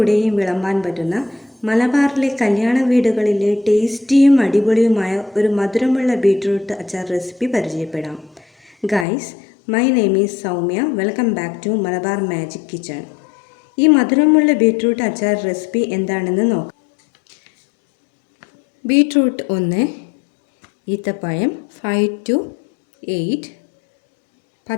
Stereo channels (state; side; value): drops out; right; at 9.1 s